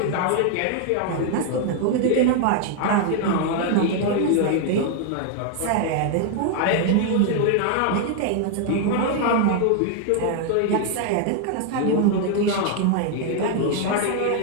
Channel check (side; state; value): both; different; correlation 0.00